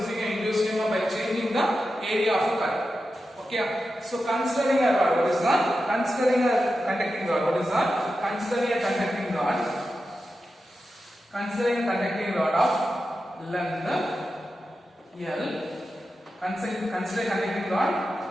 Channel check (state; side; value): normal; both; correlation 0.90